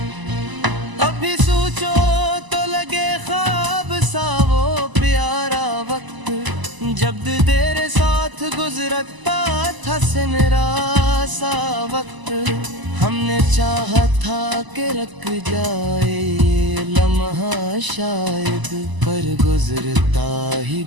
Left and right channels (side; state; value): left; late; 1.0 ms